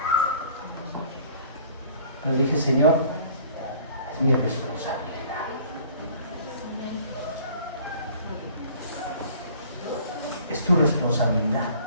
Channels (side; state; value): both; inverted; correlation -0.52